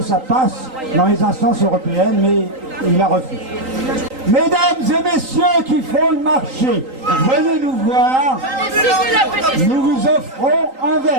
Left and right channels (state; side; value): late; left; 3.8 ms